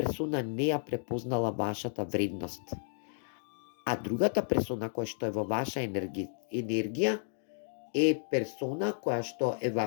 не ја препознала вашата вредност. А другата персона која што е во ваша енергија е персона која што е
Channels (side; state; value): right; silent; digital silence